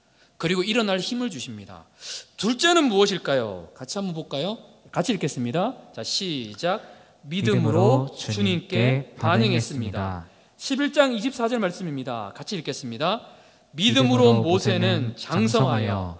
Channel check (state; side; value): identical; both; correlation 1.00